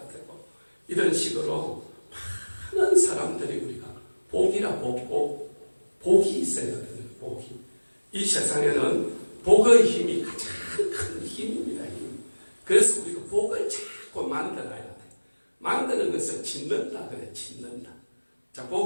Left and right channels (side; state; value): both; inverted; correlation -1.00